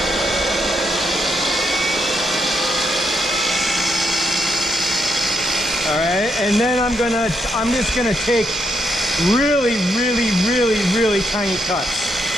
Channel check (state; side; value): noise; right; hum, 20 dB below the sound